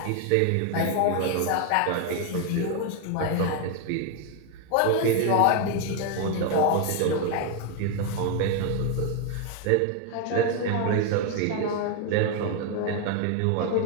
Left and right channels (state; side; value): different; both; correlation 0.01